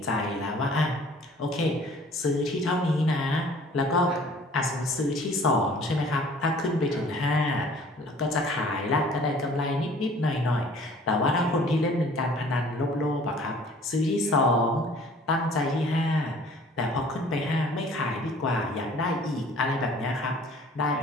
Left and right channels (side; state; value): both; normal; correlation 0.51